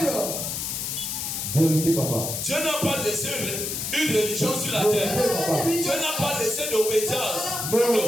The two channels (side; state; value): left; noise; hiss, 3 dB below the sound